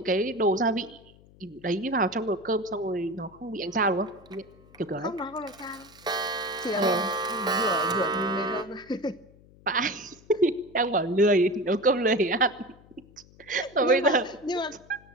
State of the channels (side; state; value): left; noise; hum, 25 dB below the sound